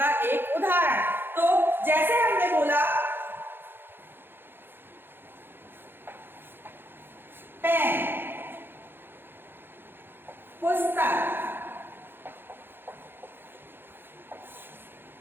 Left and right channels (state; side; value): late; left; 0.10 ms